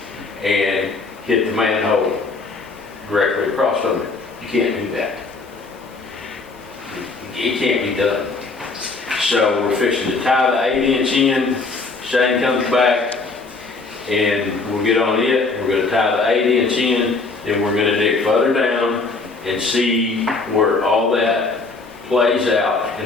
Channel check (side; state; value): right; quieter; 3.9 dB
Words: and hit the manhole directly across from it. You can't do that. It can't be done. So we're fixing to tie the 8-inch in. Shane comes back, and we'll get on it. We're gonna tie the 8-inch in, then we're gonna dig further down and see where all that plays out